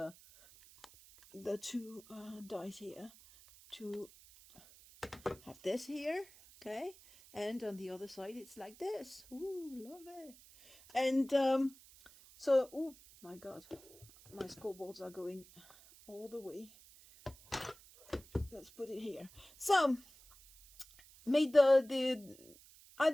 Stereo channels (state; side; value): noise; right; hiss, 22 dB below the sound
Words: two dies here to have this here, okay? And on the other side, it's like this. Ooh, love it. And so, oh my God, my scoreboards are going all the way. Let's put it here. So, made had